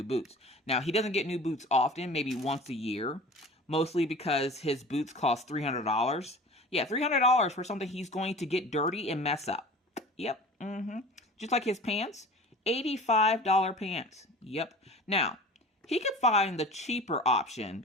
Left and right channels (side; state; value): both; normal; correlation 0.39